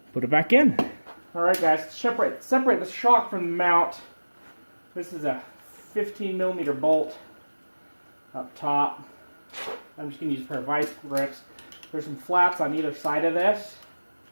put it back in. Alright guys, separate the shock from the mount. This is a 15mm bolt up top. I'm just going to use a pair of vice grips. There's some flaps on either side of this,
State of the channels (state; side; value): inverted; both; correlation -1.00